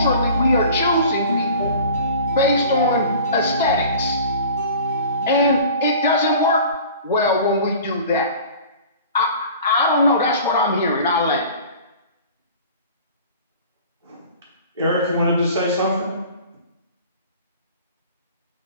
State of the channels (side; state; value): both; inverted; correlation -0.44